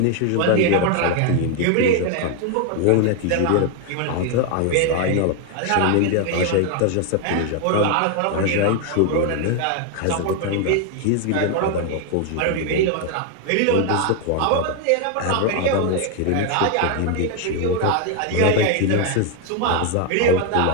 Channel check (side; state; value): both; different; correlation 0.01